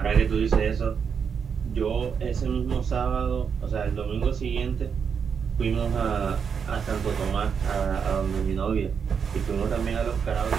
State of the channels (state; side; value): quieter; left; 6.6 dB